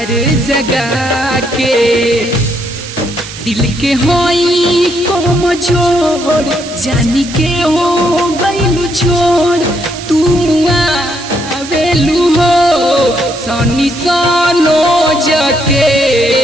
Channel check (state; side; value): noise; right; hiss, 13 dB below the sound